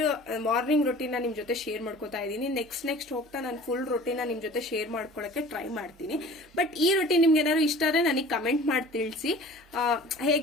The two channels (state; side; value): normal; both; correlation 0.44